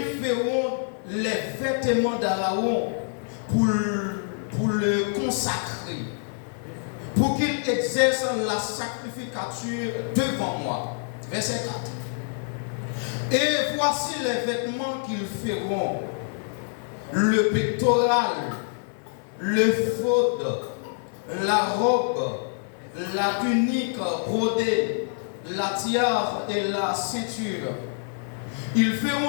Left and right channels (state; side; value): silent; right; digital silence